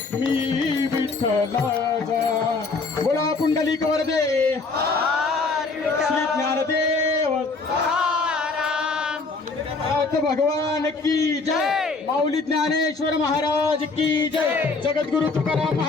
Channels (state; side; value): quieter; right; 4.0 dB